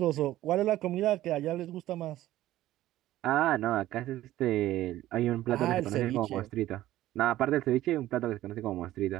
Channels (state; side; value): quieter; left; 14.7 dB